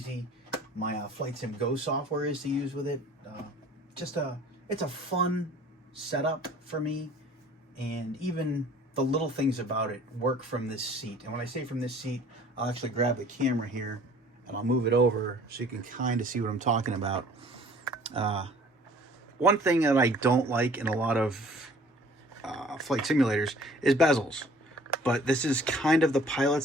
my Flightsim Go software is to use with it. It's a fun setup for me, and even the little things about it work from this seat. And when I say from this seat, I'll actually grab the camera here and I'll move it over so you can kind of see what I'm talking about. One thing that I don't like in a lot of flight simulators is bezels, but this is kind of the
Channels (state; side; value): normal; both; correlation 0.51